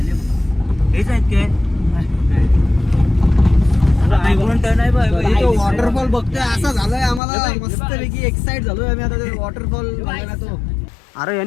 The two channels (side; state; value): right; drops out; at 7.2 s